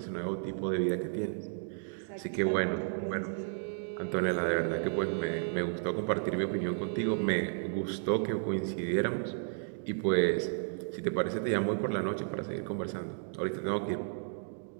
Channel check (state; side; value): silent; left; digital silence